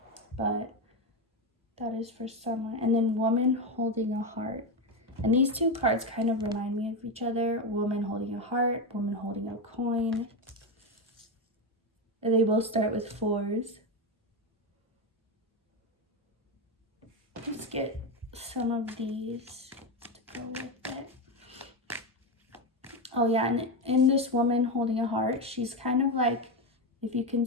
but that is for someone. And then woman holding a heart. And these two cards kind of remind me of each other. Woman holding a heart, woman holding a coin. And they both start with 4s. Let's get some of these to go with it. Oh yeah, and in this woman holding a heart, she's kind of like, if you can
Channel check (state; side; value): normal; both; correlation 0.12